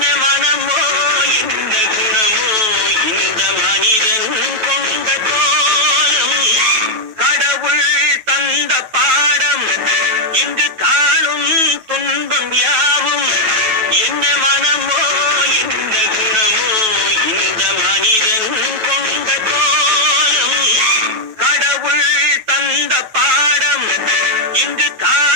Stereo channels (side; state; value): left; late; 9.2 ms